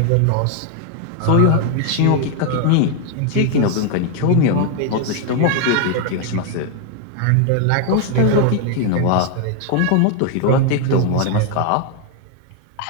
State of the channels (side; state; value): both; different; correlation 0.01